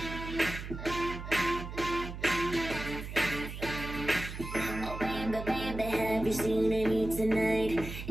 Have you seen Amy tonight?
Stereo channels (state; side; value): noise; right; hum, 8 dB below the sound